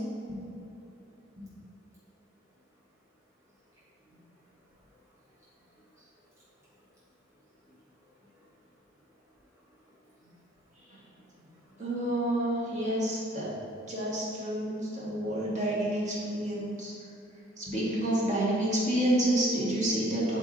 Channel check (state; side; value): normal; both; correlation 0.57